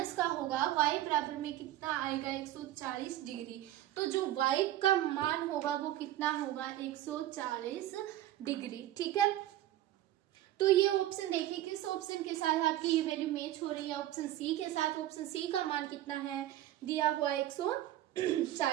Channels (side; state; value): left; quieter; 13.9 dB